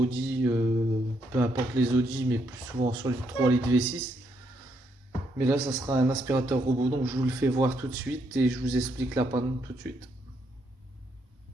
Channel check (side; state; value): both; normal; correlation 0.76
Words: peu importe les Audi, mais plus souvent sur les 3 litres V6. Mais là, ça sera un aspirateur robot, donc je vous le fais voir tout de suite et je vous explique la panne tout de suite.